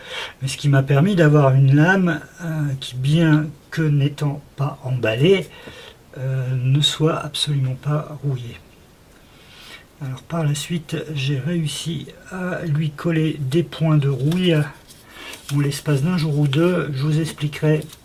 mais ce qui m'a permis d'avoir une lame qui, bien que n'étant pas emballée, ne soit absolument pas rouillée. Alors par la suite, j'ai réussi à lui coller des points de rouille en l'espace d'un jour ou deux. Je vous expliquerai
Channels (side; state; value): both; identical; correlation 1.00